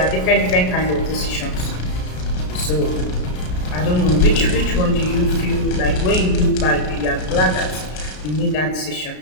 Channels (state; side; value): late; right; 33 ms